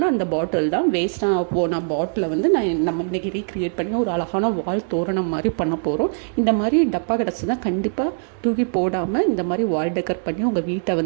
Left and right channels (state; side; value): silent; left; 64 dB below the other